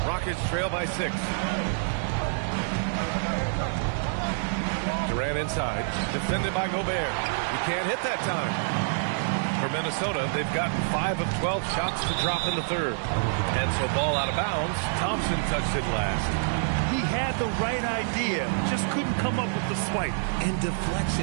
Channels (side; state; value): left; silent; digital silence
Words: Rockets trail by 6. Durant inside. Defended by Gobert. He can't hit that time. For Minnesota, they've gotten 5 of 12 shots to drop in the third. And so ball out of bounds. Thompson touched it last. He had the right idea, just couldn't come up with the swipe. And